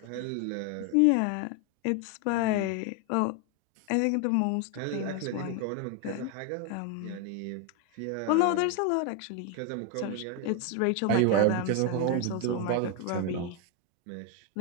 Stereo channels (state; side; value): different; both; correlation 0.01